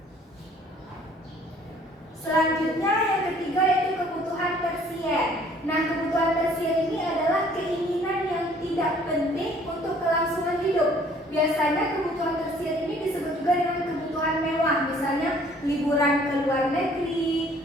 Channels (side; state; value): both; normal; correlation 0.57